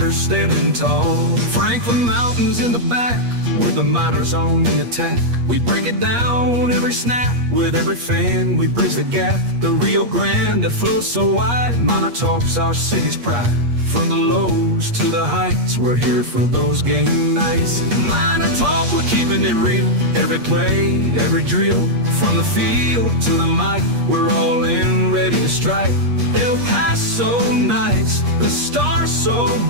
standing tall. Franklin Mountains in the back, with the miners on the attack. We break it down every snap, with every fan we bridge the gap. The Rio Grande that flows so wide, MinerTalk's our city's pride. From the lows to the heights, we're here for those game nights. MinerTalk, we're keeping it real. Every play, every drill, from the field to the mic, we're all in, ready to strike. El Paso nights, the stars so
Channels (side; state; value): left; late; 8.4 ms